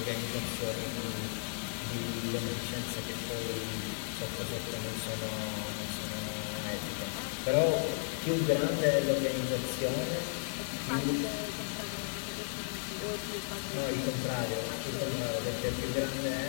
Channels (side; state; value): right; silent; 55 dB below the other